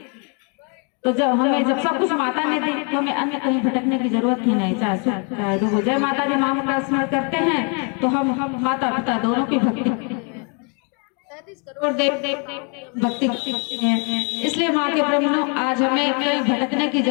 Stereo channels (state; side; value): quieter; right; 36.5 dB